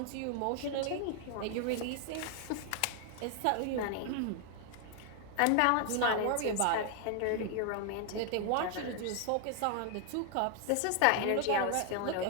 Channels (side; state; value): both; different; correlation 0.00